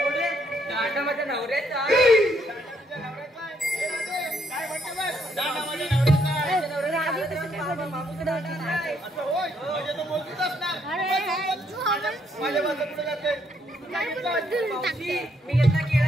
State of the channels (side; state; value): both; normal; correlation 0.72